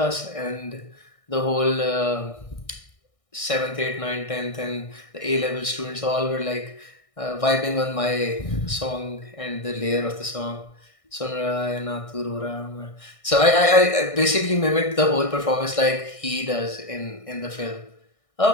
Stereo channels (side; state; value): right; late; 1.6 ms